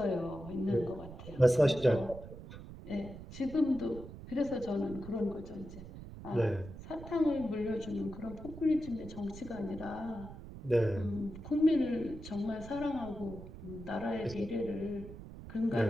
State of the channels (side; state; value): right; noise; rumble, 13 dB below the sound